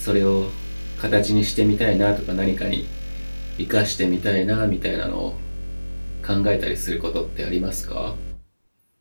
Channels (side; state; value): both; inverted; correlation -1.00